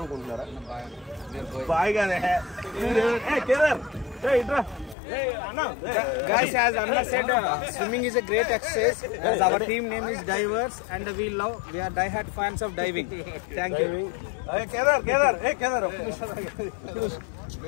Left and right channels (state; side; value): drops out; right; at 5.0 s